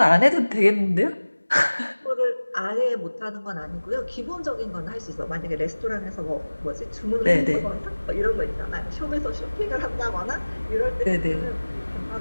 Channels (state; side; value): inverted; both; correlation -1.00